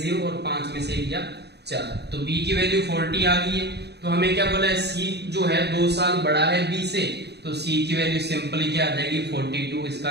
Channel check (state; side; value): late; left; 0.49 ms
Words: और 5 में से 1 गया 4। तो B की वैल्यू 40 आ गई है। तो हमें क्या बोला है, C जो है 2 साल बड़ा है B से, तो C की वैल्यू सिंपली क्या आ जाएगी, 42। इसका